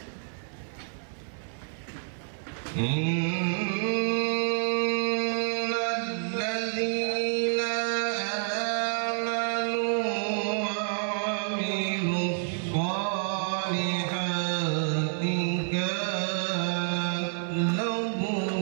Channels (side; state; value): left; silent; 59 dB below the other